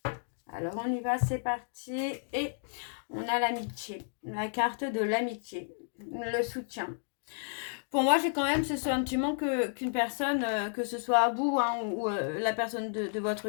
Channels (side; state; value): right; silent; digital silence